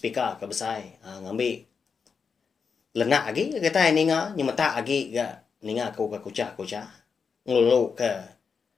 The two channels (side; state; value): right; quieter; 5.8 dB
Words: ke besar ngambil lenak lagi kita ninga nyemata lagi ga ninga ku ka kuca ngulu ke